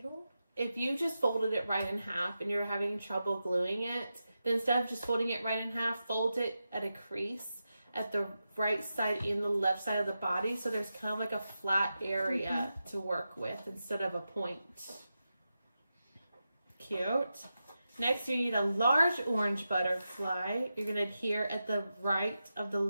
If you just folded it right in half and you're having trouble gluing it, then instead of just folding it right in half, fold it at a crease at the right side and the left side of the body. So there's kind of like a flat area to work with instead of a point. Cute. Next, you need a large orange butterfly. You're going to adhere at the right of the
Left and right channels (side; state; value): both; inverted; correlation -0.90